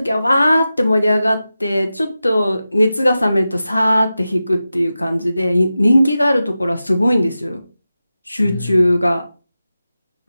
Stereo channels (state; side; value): inverted; both; correlation -0.93